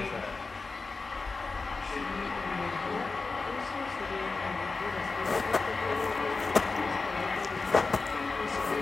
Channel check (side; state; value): right; quieter; 4.0 dB